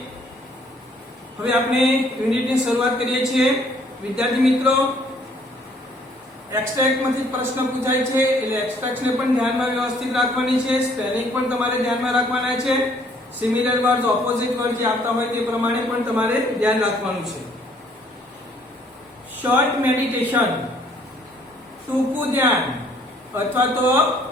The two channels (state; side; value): normal; both; correlation 0.62